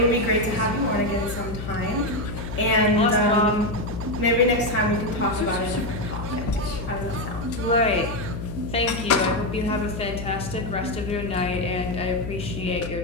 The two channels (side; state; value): left; noise; hum, 7 dB below the sound